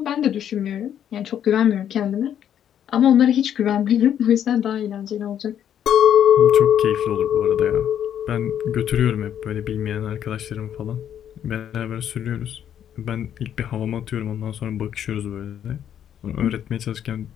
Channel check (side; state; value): right; quieter; 9.7 dB